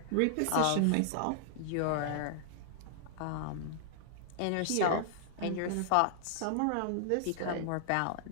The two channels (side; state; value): both; different; correlation -0.01